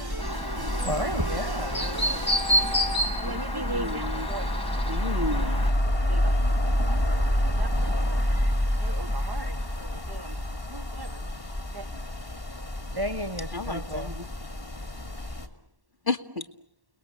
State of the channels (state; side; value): late; left; 1.1 ms